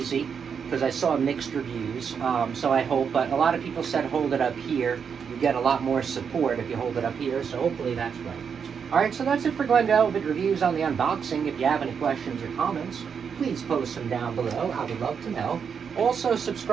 because I saw mixed reviews, so I hope, but a lot of people said hold it up here. You get a lot more support if you hold it up here, so hopefully that's right. Alright, so that's it for Glen Velvet Reviews on the unboxing. If you have any questions or comments, please post them down below. I would love to know. Also,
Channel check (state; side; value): quieter; left; 6.7 dB